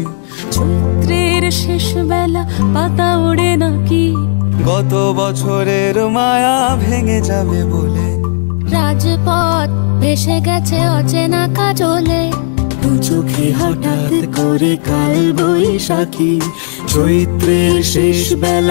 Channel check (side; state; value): right; silent; 73 dB below the other